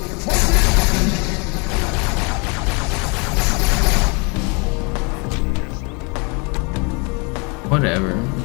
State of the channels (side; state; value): right; quieter; 32.2 dB